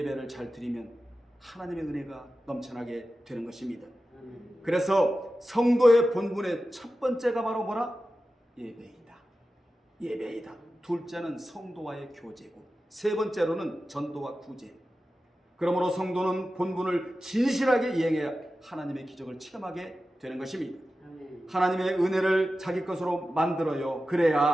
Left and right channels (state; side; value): normal; both; correlation 0.93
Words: 잘 드리면 하나님의 은혜가 넘쳐나게 되는 것입니다. 그래서 성도의 본분의 첫 번째가 바로 뭐라? 예배이다. 예배이다. 둘째는 성도와의 교제고, 세 번째로는 전도와 구제. 그러므로 성도는 본분을 진실하게 이행해야 하나님의 기적을 체험하게 되는 것입니다. 하나님의 은혜를 자기 것으로 만들어요.